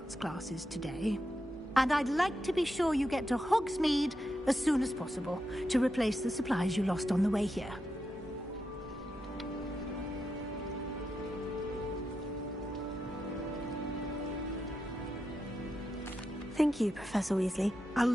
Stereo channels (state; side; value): normal; both; correlation 0.86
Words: classes today. And I'd like to be sure you get to Hogsmeade as soon as possible to replace the supplies you lost on the way here. Thank you, Professor Weasley. A